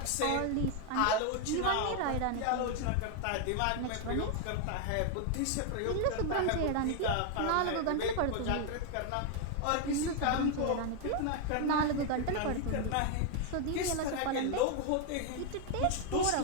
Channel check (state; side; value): different; both; correlation 0.00